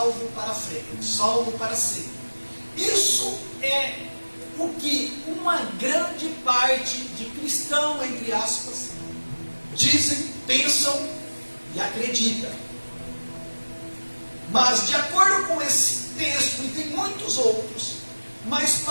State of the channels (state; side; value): inverted; both; correlation -1.00